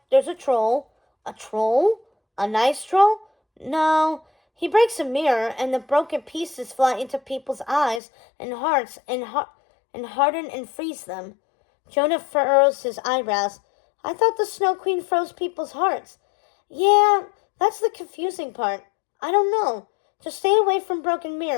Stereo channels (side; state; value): right; drops out; at 8.0 s